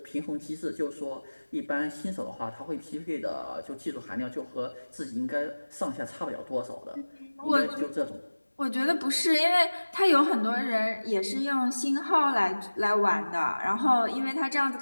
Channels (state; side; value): inverted; both; correlation -1.00